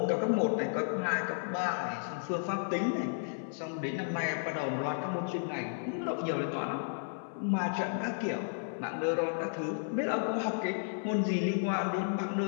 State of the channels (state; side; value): silent; right; 56 dB below the other